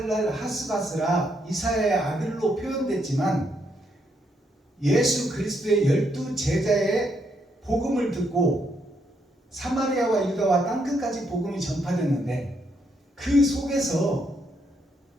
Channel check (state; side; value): normal; both; correlation 0.76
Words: 하스바스라 이사야의 아들로 표현됐지만 예수 그리스도의 12 제자의 복음을 듣고 사마리아와 유다와 땅끝까지 복음이 전파됐는데 그 속에서